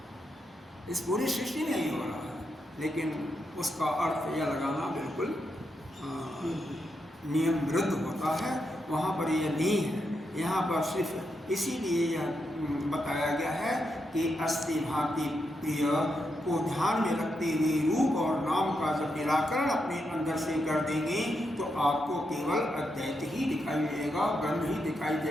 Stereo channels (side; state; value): both; normal; correlation 0.83